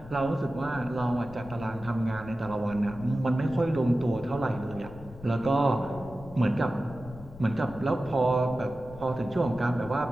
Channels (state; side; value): noise; left; rumble, 17 dB below the sound